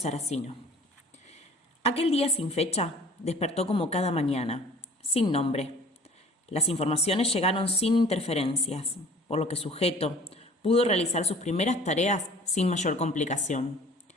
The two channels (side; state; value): both; normal; correlation 0.48